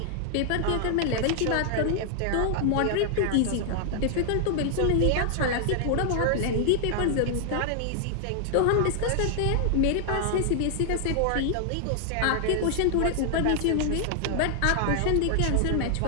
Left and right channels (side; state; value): both; different; correlation -0.01